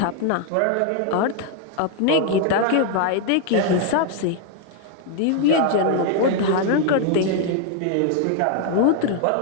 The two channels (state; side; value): different; both; correlation 0.00